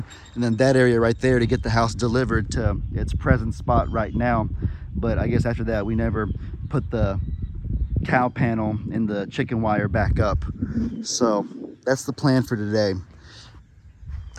and then that area right there to get the house delivered to its present spot right now. But I guess after that we never put the cow panel and the chicken wire back up. So that's the plan for today.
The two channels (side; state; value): both; identical; correlation 1.00